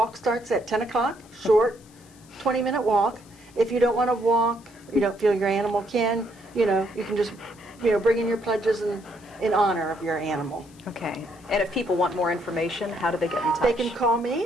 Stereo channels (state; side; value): noise; left; hiss, 27 dB below the sound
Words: starts at 10 o'clock. Short, 20-minute walk. If you don't want to walk, you don't feel your animal can, you can just, bring in your pledges in honor of your animal. Okay. And if people want more information, how do they get in touch? They can call